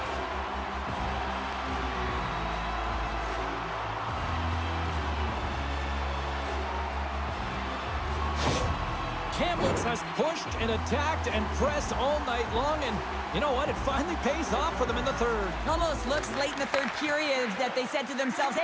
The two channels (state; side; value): identical; both; correlation 1.00